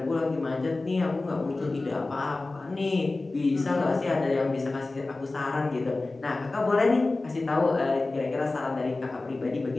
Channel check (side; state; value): right; quieter; 3.2 dB